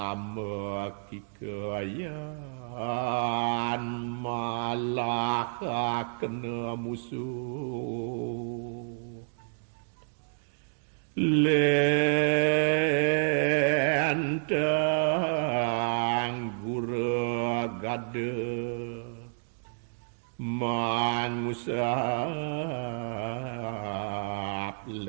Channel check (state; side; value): silent; left; digital silence